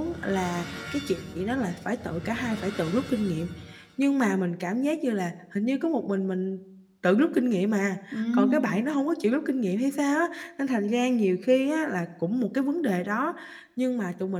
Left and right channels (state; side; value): identical; both; correlation 1.00